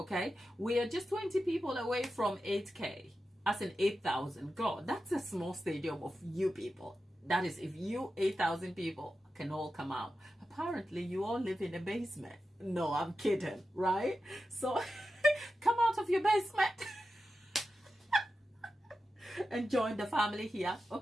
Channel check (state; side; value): normal; both; correlation 0.91